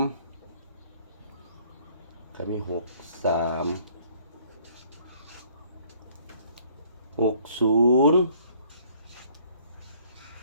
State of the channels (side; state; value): both; inverted; correlation -0.60